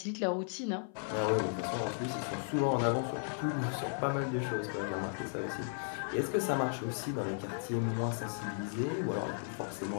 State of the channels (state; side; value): silent; right; 54 dB below the other